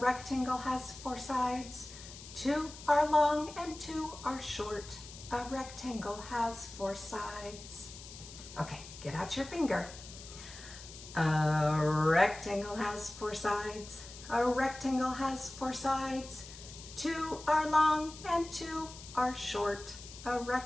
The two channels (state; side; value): noise; left; hiss, 15 dB below the sound